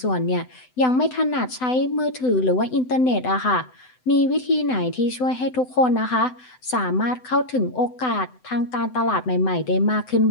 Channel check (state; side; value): late; right; 7.9 ms